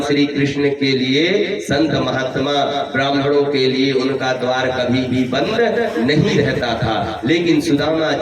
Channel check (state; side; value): identical; both; correlation 1.00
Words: श्री कृष्ण के लिए, संत महात्मा ब्राह्मणों के लिए उनका द्वार कभी भी बंद नहीं रहता था, लेकिन सुदामा